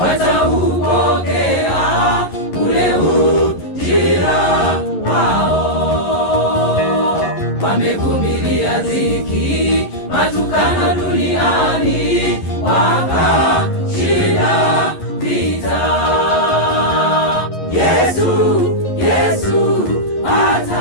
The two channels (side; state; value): right; late; 11 ms